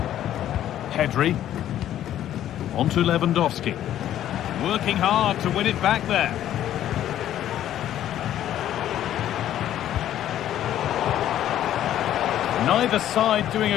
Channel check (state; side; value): quieter; right; 11.8 dB